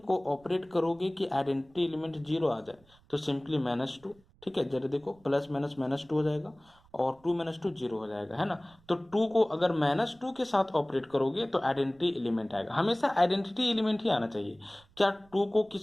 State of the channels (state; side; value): noise; right; rumble, 30 dB below the sound